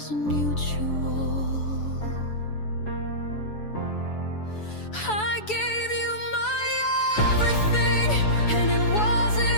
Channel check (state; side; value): late; right; 7.0 ms